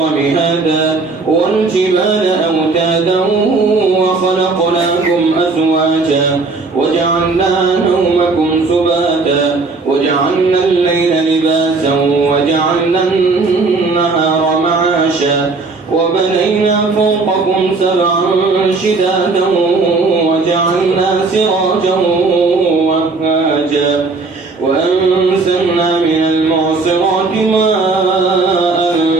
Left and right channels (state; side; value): quieter; left; 3.9 dB